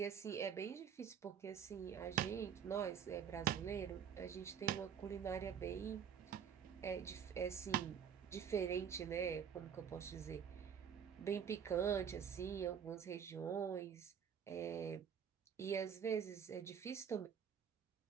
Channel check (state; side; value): quieter; left; 7.8 dB